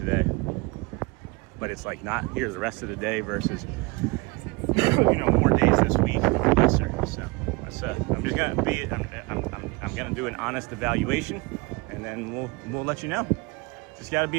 but it's like not here the rest of the day versus more days this week. Yes, sir. So I'm just gonna be I'm gonna do an honest evaluation, and then we'll let you know. Just got to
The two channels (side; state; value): left; quieter; 25.7 dB